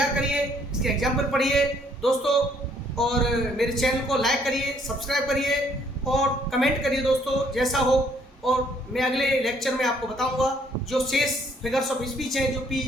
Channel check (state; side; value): normal; both; correlation 0.65